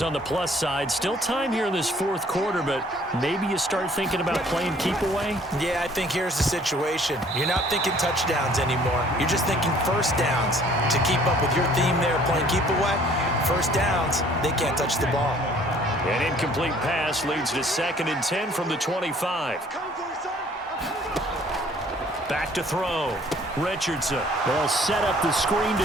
on the plus side. Still time here in this fourth quarter, but maybe you start thinking about playing keep away? Yeah, I think here's the situation. You're not thinking touchdowns anymore. You're just thinking first downs. To keep up with your theme there, playing keep away, first downs, they can't touch the ball. An incomplete pass leads to 2nd and 10 from the 25. Back to throw. Richardson. They'll set up the screen to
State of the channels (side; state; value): both; normal; correlation 0.56